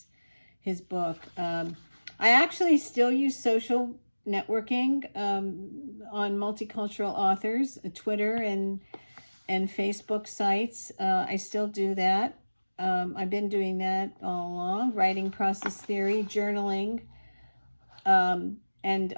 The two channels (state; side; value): inverted; both; correlation -1.00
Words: book. I actually still use social networking on multicultural authors, Twitter and Facebook sites. I still do that. I've been doing that all along, writing process theory, journaling, and